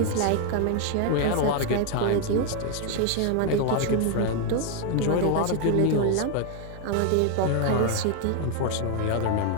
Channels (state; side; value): different; both; correlation 0.00